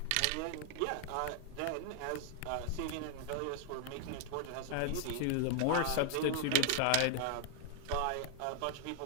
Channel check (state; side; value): different; both; correlation -0.01